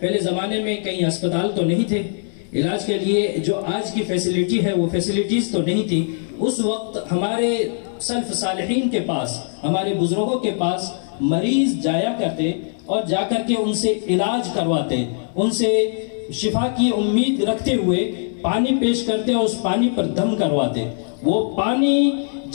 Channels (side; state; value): right; silent; 65 dB below the other